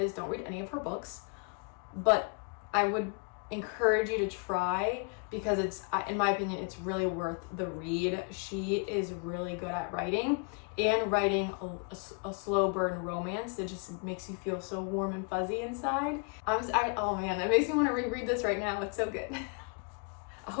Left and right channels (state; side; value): quieter; right; 36.9 dB